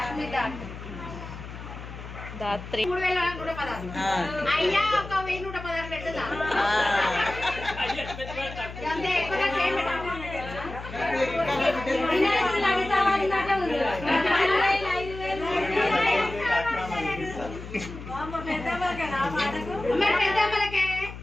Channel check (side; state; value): left; noise; hum, 12 dB below the sound